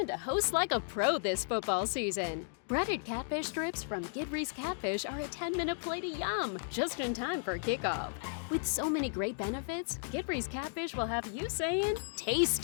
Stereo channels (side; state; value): right; silent; digital silence